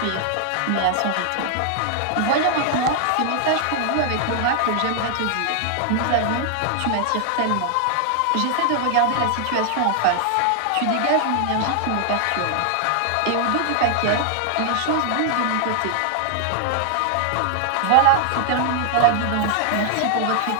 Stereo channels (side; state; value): both; different; correlation 0.00